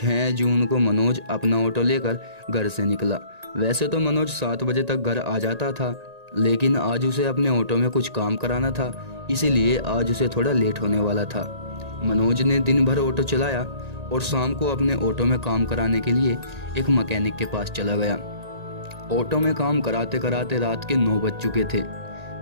जून को मनोज अपना ऑटो लेकर घर से निकला। वैसे तो मनोज 7 बजे तक घर आ जाता था, लेकिन आज उसे अपने ऑटो में कुछ काम कराना था, इसीलिए आज उसे थोड़ा लेट होने वाला था। मनोज ने दिन भर ऑटो चलाया और शाम को अपने ऑटो में काम कराने के लिए एक मैकेनिक के पास चला गया। ऑटो में काम कराते कराते रात के 9 बज चुके थे।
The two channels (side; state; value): left; late; 1.8 ms